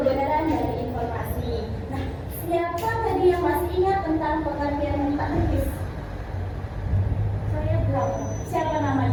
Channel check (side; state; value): both; identical; correlation 1.00